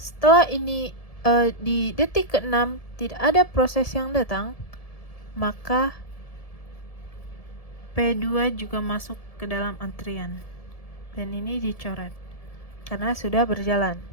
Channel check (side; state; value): right; late; 1.7 ms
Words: setelah ini di detik ke-6 tidak ada proses yang datang, maka P2 juga masuk ke dalam antrian. Dan ini dicoret karena sudah berjalan.